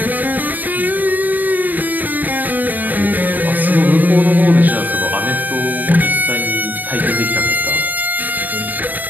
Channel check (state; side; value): late; left; 0.085 ms